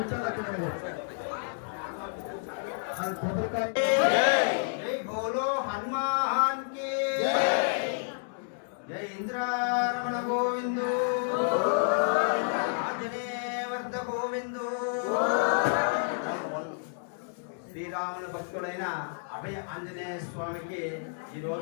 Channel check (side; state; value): right; silent; digital silence